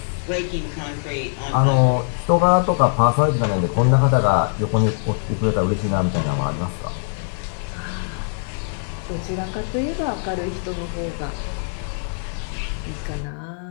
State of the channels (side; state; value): right; silent; digital silence